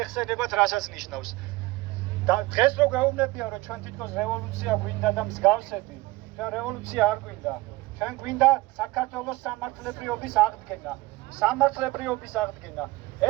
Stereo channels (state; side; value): quieter; left; 20.5 dB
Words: რასაც ნიშნავს. და დღეს რო გვეუბნებიან, რომ ჩვენ თითქოს რევოლუცია გვინდა და მსგავსები, ჩვენ რევოლუცია არ გვინდა. ჩვენ გვინდა საქართველოს სამართლებრივობის აღდგენა. სამართლებრივობის აღდგენა.